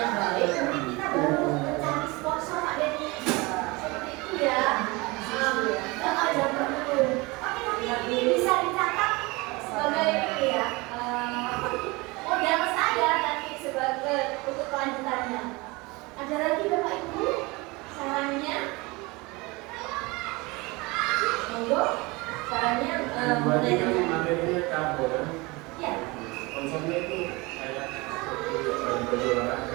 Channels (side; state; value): left; quieter; 24.4 dB